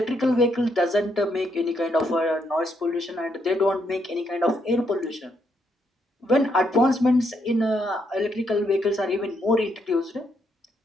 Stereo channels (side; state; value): both; normal; correlation 0.76